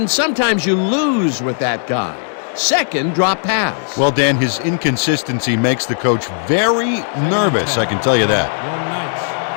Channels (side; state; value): right; silent; 63 dB below the other